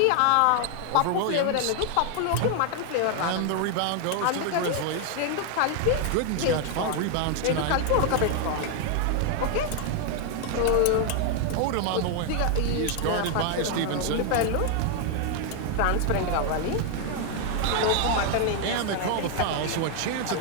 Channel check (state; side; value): different; both; correlation 0.00